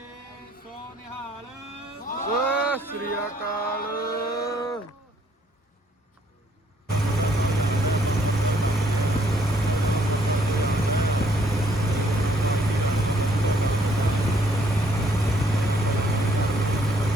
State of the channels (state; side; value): normal; both; correlation 0.66